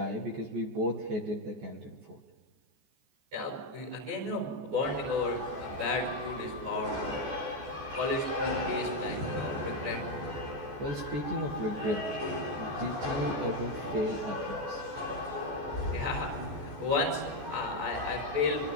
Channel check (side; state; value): left; late; 14 ms